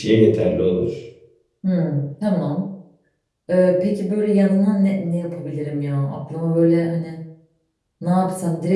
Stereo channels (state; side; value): identical; both; correlation 1.00